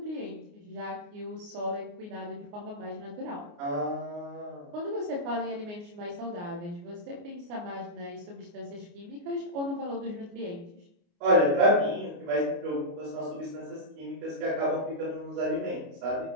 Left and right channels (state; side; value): late; left; 29 ms